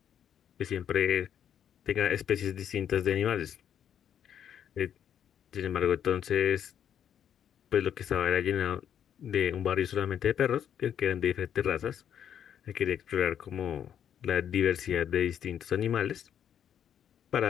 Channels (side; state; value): right; quieter; 9.2 dB